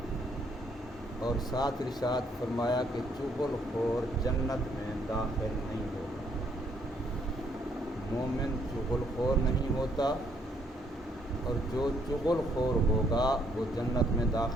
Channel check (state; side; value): normal; both; correlation 0.69